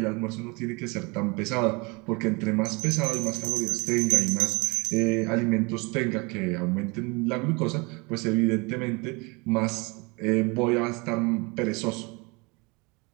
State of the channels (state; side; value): quieter; left; 27.9 dB